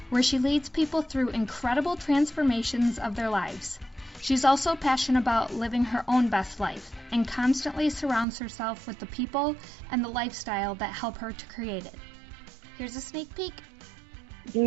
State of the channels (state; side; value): drops out; left; at 8.2 s